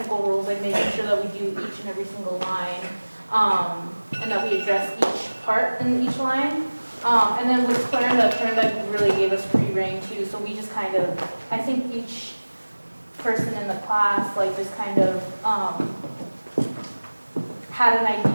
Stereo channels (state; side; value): inverted; both; correlation -1.00